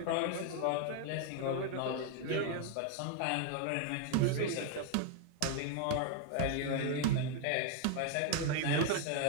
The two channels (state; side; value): different; both; correlation 0.00